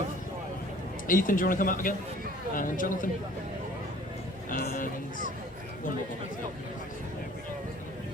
Ethan, do you want to come up again? And Jonathan? And one more.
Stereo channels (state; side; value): normal; both; correlation 0.51